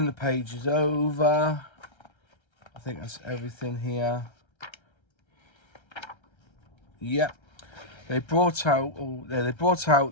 the pages over, I think that's everything here. Yep. They brought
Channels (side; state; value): right; late; 1.3 ms